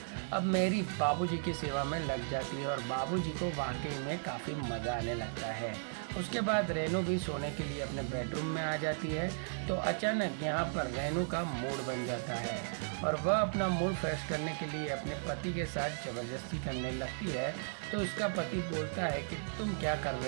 अब मैरी बाबूजी की सेवा में लग जाती है और बाबूजी को वाकई में काफ़ी मज़ा आने लगता है। उसके बाद रेनू भी सोने के लिए अपने बेडरूम में आ जाती है। तो अचानक यहाँ पर रेनू का मूड बन जाता है और वह अपना मूड फ्रेश करने के लिए अपने पति के साथ ज़बरदस्ती करने लगती है। तो उसका पति बोलता है कि तुम क्या कर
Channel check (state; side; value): silent; left; digital silence